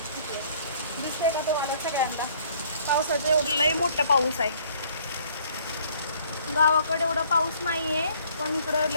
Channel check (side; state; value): both; inverted; correlation -0.59